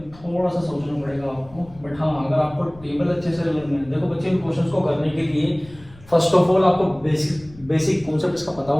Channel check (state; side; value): noise; left; rumble, 22 dB below the sound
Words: थोड़ा सा सोचना पड़ेगा आपको, बट हाँ अगर आपको टेबल अच्छे से लर्न है, देखो बच्चे इन क्वेश्चंस को करने के लिए फर्स्ट ऑफ ऑल आपको बेसिक कॉन्सेप्ट इसका पता